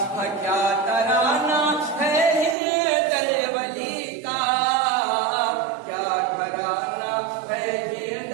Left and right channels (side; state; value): left; drops out; at 2.6 s